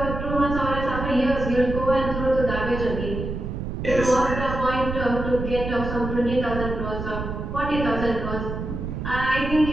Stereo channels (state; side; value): noise; right; rumble, 5 dB below the sound